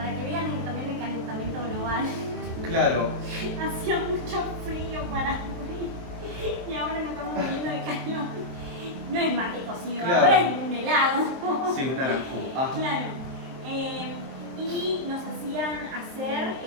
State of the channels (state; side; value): late; left; 23 ms